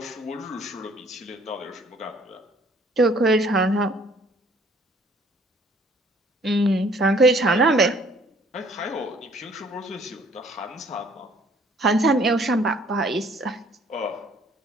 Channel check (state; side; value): normal; both; correlation 0.59